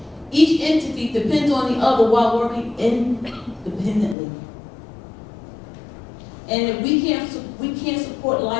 Each entity depends on the other while working independently. And we can't support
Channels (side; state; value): right; drops out; at 4.2 s